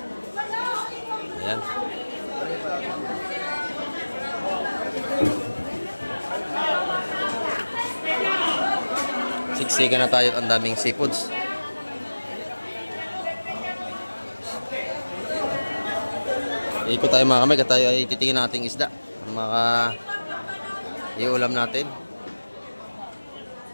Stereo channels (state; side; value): inverted; both; correlation -1.00